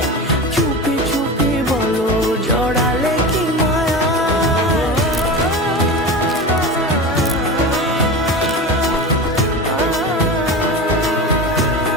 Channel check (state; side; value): normal; both; correlation 0.27